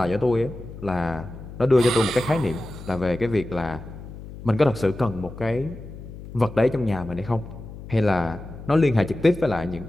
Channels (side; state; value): left; noise; hum, 13 dB below the sound